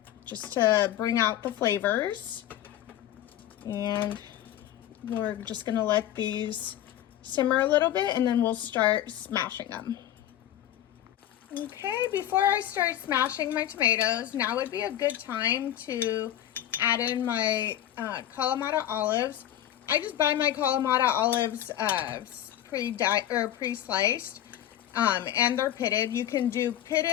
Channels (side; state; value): right; quieter; 12.0 dB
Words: just to bring out the flavors. And we're just gonna let these simmer a little bit, and then we'll start smashing them. Okay, before I start smashing my tomatoes, now would be a good time to add in my Kalamata olives. I just buy my Kalamata olives pre-sliced, and they're pitted. You can do